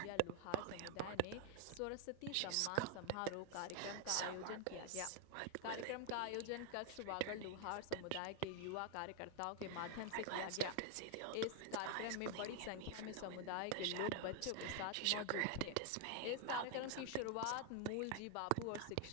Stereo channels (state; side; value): different; both; correlation 0.00